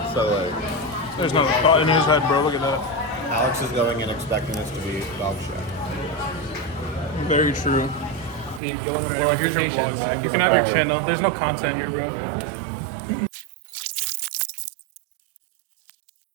So like, There's no thought in his head, bro. Look at that. Alex is going in expecting this to be dog shit. Very true. Bro, here's your vlog. You can have your channel. There's no content here, bro.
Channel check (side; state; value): left; drops out; at 8.6 s